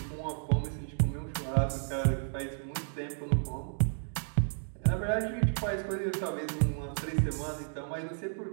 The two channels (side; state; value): left; silent; 56 dB below the other